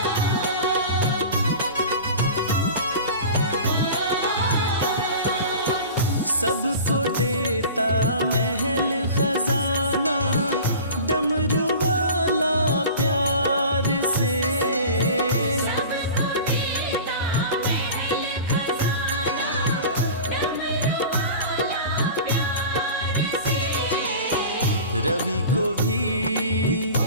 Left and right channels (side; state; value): both; inverted; correlation -0.37